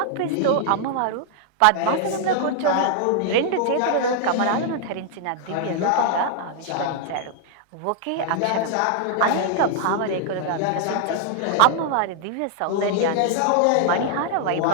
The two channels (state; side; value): different; both; correlation 0.00